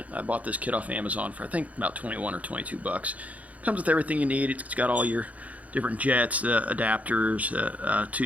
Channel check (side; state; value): left; late; 0.070 ms